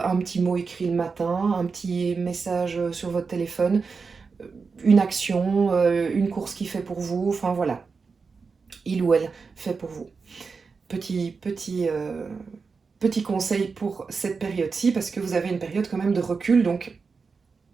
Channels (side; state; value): left; quieter; 4.9 dB